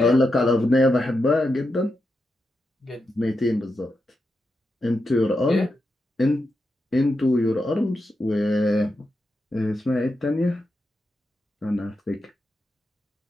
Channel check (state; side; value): normal; both; correlation 0.87